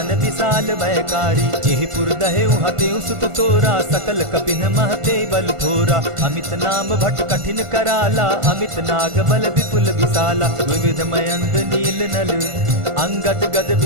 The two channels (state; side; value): late; left; 1.4 ms